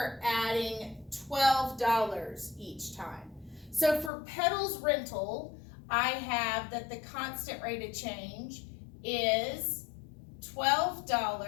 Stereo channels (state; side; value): drops out; right; at 4.1 s